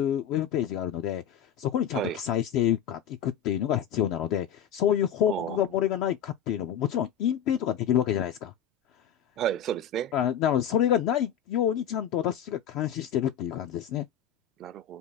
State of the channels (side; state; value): right; quieter; 8.1 dB